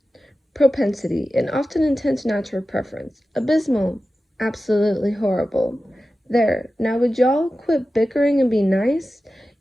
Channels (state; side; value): normal; both; correlation 0.94